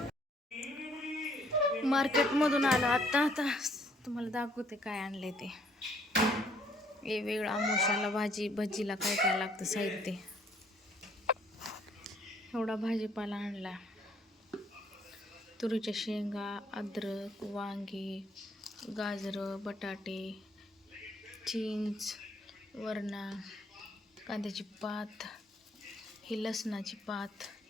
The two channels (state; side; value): normal; both; correlation 0.64